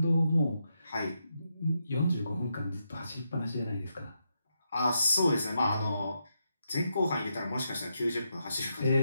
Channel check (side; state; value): both; inverted; correlation -0.83